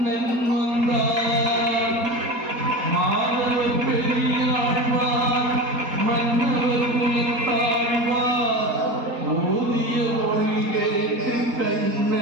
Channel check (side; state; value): left; late; 4.2 ms